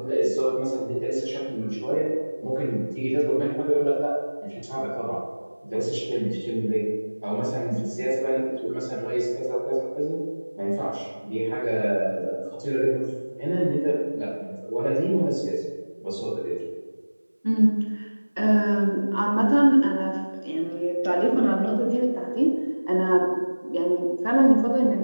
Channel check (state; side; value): inverted; both; correlation -1.00